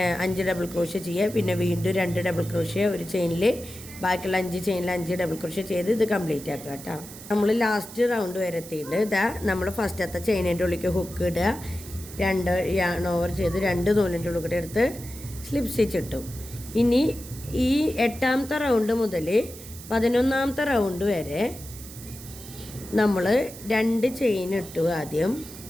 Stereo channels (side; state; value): right; noise; hiss, 15 dB below the sound